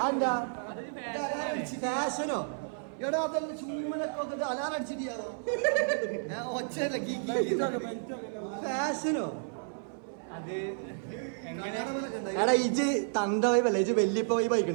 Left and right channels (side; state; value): left; silent; 55 dB below the other